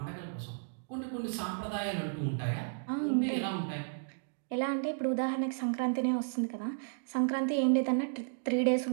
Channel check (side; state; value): left; silent; digital silence